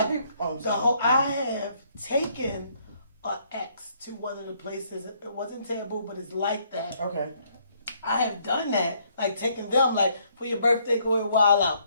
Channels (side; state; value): both; inverted; correlation -0.68